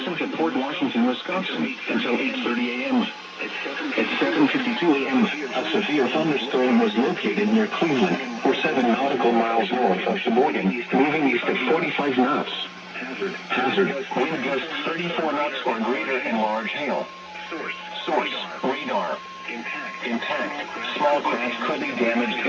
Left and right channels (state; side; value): identical; both; correlation 1.00